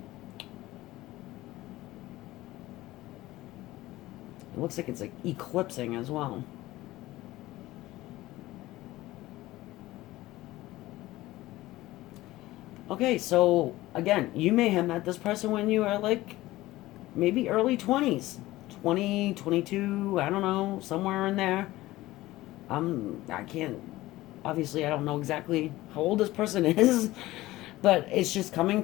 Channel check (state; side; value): quieter; right; 17.4 dB